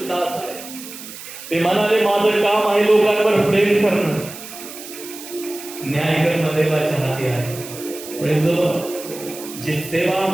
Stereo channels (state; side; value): noise; right; hiss, 13 dB below the sound